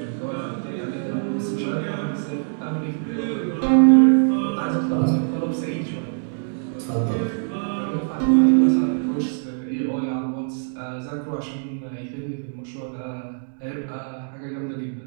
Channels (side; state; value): left; silent; digital silence